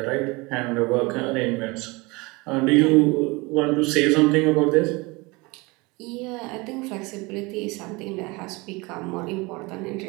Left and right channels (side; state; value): left; quieter; 25.1 dB